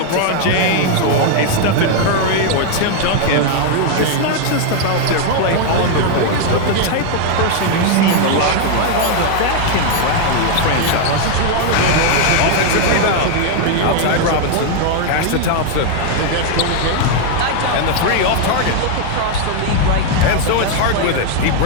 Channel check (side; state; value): both; different; correlation 0.00